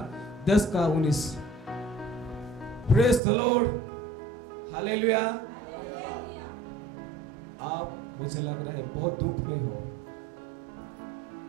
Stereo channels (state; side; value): drops out; left; at 3.2 s